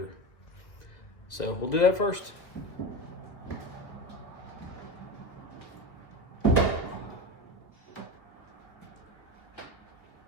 So we'll do that first.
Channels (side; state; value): right; late; 2.2 ms